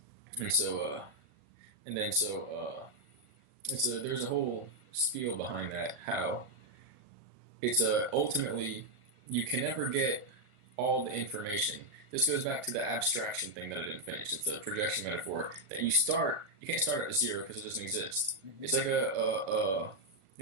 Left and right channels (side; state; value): left; late; 1.4 ms